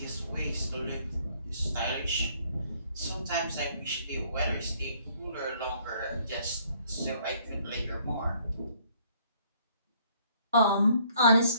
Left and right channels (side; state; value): both; inverted; correlation -0.63